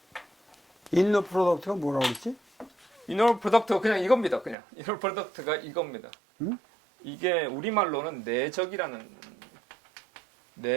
인너 프로덕트가 뭐라고 그랬지? 이너 프로덕트가 그냥 이겁니다. 그냥 이너 프로덕트가 이겁니다. 응? 이게 우리말로는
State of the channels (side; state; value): left; drops out; at 4.5 s